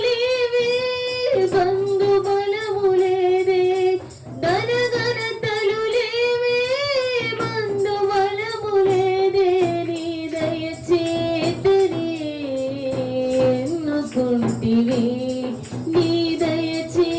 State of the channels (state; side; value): identical; both; correlation 1.00